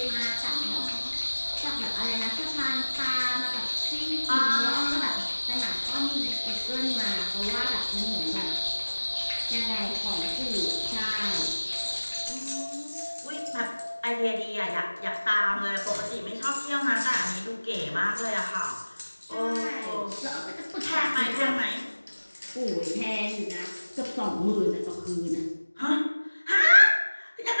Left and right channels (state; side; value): inverted; both; correlation -1.00